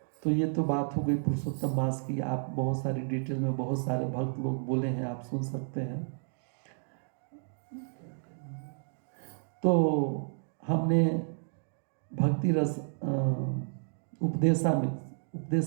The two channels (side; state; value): left; silent; digital silence